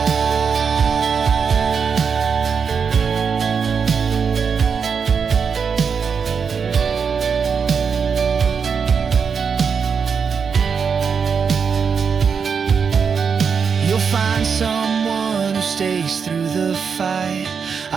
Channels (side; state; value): left; quieter; 6.2 dB